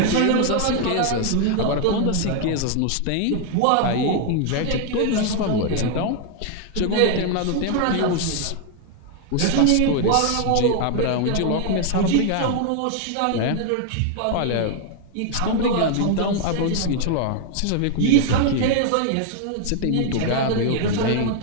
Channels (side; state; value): both; different; correlation 0.00